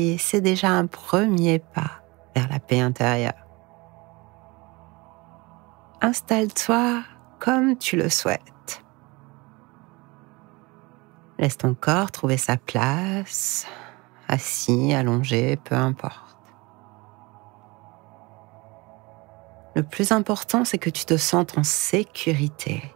et c'est déjà un premier pas vers la paix intérieure. Installe-toi comme tu le souhaites. Laisse ton corps trouver sa place, assis, allongé, peu importe. Le plus important, c'est que tu te sentes en sécurité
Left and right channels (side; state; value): left; quieter; 24.5 dB